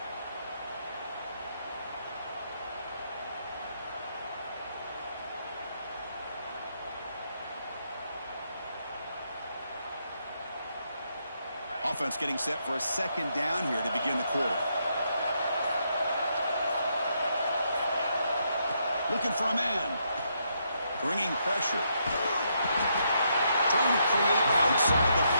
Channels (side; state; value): both; inverted; correlation -0.77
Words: Offense getting set for a second down here to begin the quarter. Looking for a man. Bringing pressure. Trying to create outside the